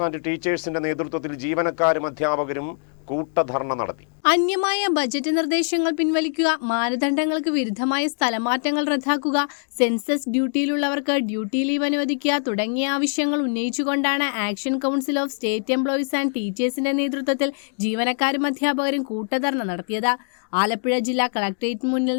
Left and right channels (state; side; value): silent; right; 63 dB below the other